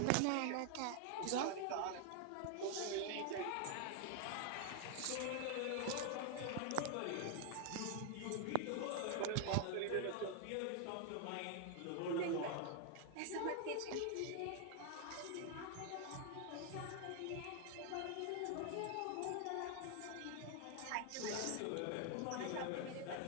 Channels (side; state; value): both; different; correlation 0.00